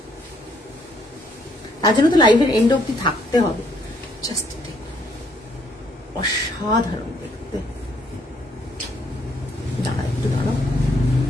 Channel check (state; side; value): normal; both; correlation 0.68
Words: তার জন্য তো লাইভের এন্ড অব্দি থাকতে হবে। জাস্ট অসাধারণ দেখতে, দাঁড়া একটু দাঁড়াও।